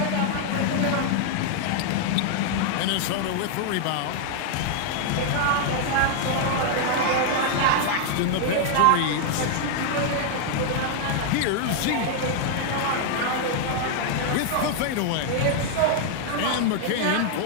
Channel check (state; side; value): different; both; correlation 0.00